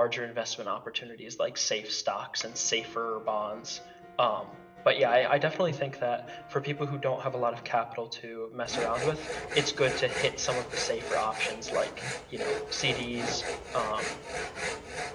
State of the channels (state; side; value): identical; both; correlation 1.00